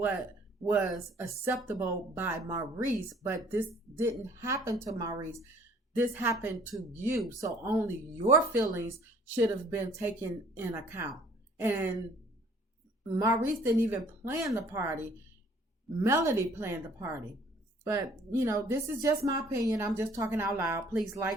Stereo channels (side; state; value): both; normal; correlation 0.56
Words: was acceptable by Maurice, but this didn't happen to Maurice. This happened to you. So only your feelings should have been taken in account. And Maurice didn't even plan the party. Melody planned the party. But, this is just my opinion. I'm just talking out loud. Please